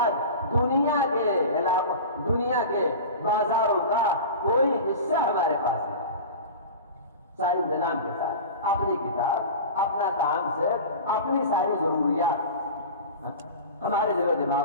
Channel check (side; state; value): both; inverted; correlation -0.32